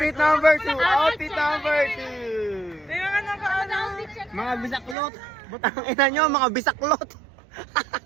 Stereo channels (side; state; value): left; drops out; at 5.0 s